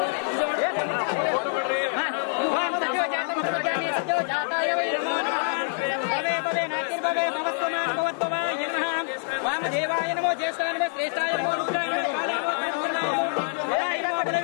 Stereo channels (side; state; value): right; silent; 61 dB below the other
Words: वामदेवाय नमो ज्येष्ठाय नमो श्रेष्ठाय नमो रुद्राय नमो कालाय नमो